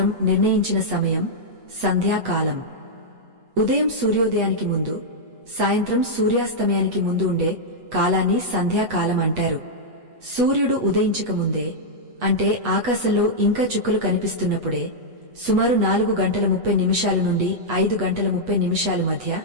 నిర్ణయించిన సమయం సంధ్యాకాలం. ఉదయం సూర్యోదయానికి ముందు, సాయంత్రం సూర్యాస్తమయానికి ముందు ఉండే కాలాన్ని సంధ్యాకాలం అంటారు. సూర్యుడు ఉదయించకముందే, అంటే ఆకాశంలో ఇంకా చుక్కలు కనిపిస్తున్నప్పుడే, సుమారు 4 గంటల 30 నిమిషాలు నుండి 5 గంటల 30 నిమిషాలు మధ్య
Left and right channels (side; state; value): left; late; 8.2 ms